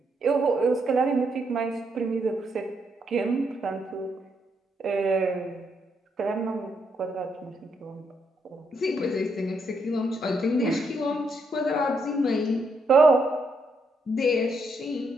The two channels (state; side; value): normal; both; correlation 0.77